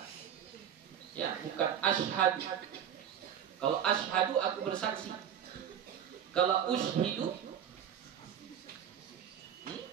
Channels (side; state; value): left; quieter; 9.1 dB